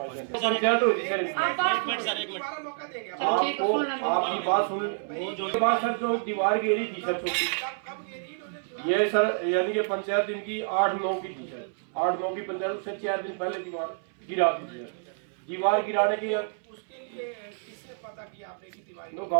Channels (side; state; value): left; silent; 59 dB below the other